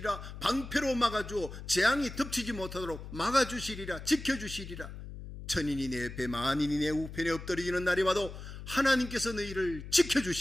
방패로 막아주어 재앙이 덮치지 못하도록 막아주시리라. 지켜주시리라. 천인이 내 옆에 만인이 내 우편에 엎드러지는 날이 와도 하나님께서 너희를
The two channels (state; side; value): noise; left; hum, 11 dB below the sound